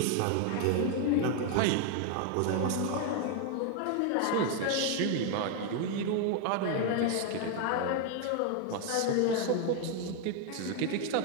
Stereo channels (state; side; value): different; both; correlation 0.00